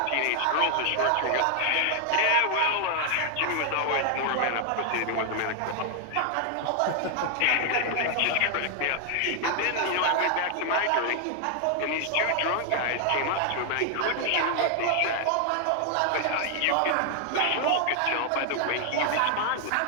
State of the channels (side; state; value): both; different; correlation 0.00